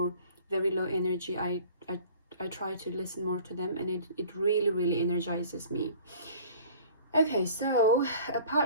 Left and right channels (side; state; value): both; inverted; correlation -0.47